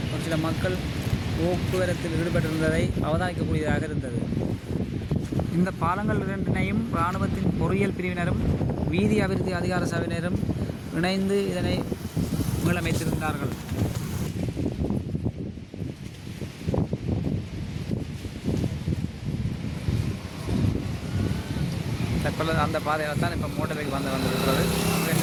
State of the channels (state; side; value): identical; both; correlation 1.00